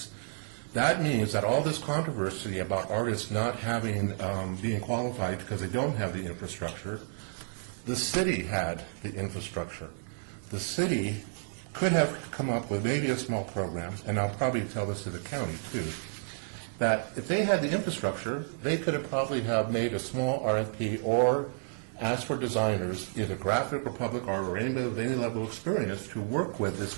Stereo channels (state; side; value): silent; left; digital silence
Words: That means that all this controversy about artists not having, being qualified because they don't have the infrastructure, the city had the infrastructure. The city could have come up with maybe a small program, and I'll probably tell this to the county too, that if they had the infrastructure, they could have probably have made a small RFP or asked for designers, either graphic or public art or anybody with any level of experience, to work with this